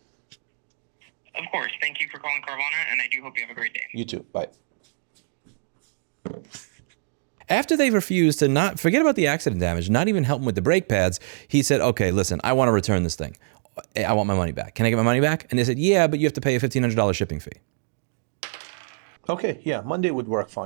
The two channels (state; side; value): silent; left; digital silence